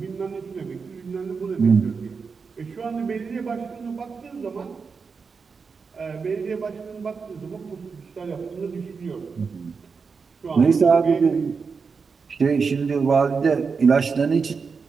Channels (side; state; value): left; quieter; 5.2 dB